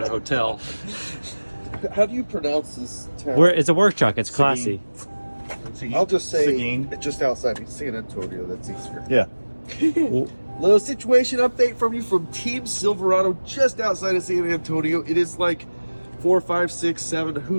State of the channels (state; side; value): inverted; both; correlation -1.00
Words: a hotel. How do you pronounce this town? It's a work truck, it's classy. I'll just say Seguin. it's just outside San Antonio, that's easier. Yeah. Little situation update from you from Team Silverado just outside of San Antonio. It is like 4, 5, 6, 7,